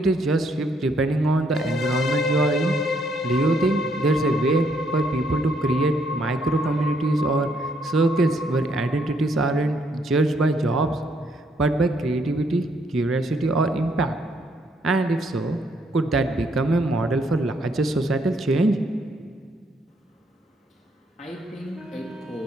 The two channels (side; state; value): both; normal; correlation 0.71